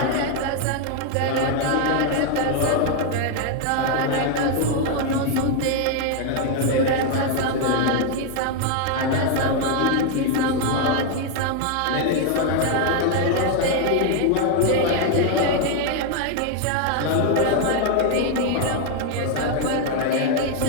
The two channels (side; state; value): both; different; correlation 0.01